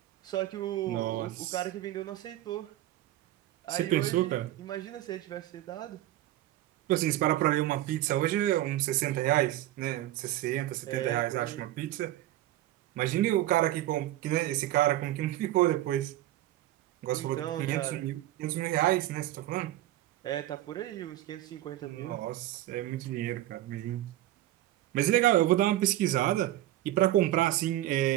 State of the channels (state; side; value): quieter; left; 14.7 dB